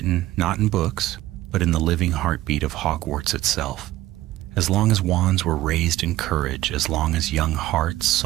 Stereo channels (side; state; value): left; quieter; 15.8 dB